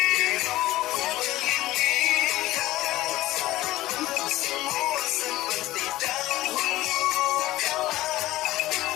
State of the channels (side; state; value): right; quieter; 16.7 dB